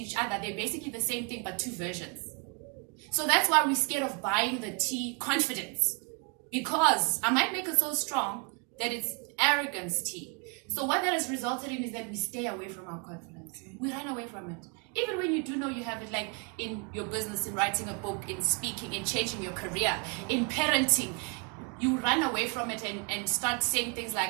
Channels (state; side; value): quieter; left; 35.8 dB